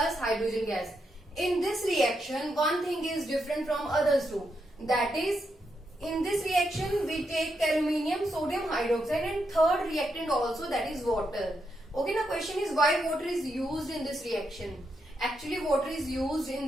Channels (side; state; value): both; normal; correlation 0.82